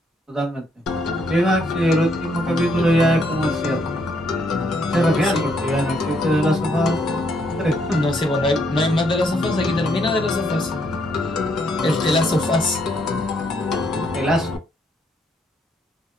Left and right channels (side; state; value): both; normal; correlation 0.72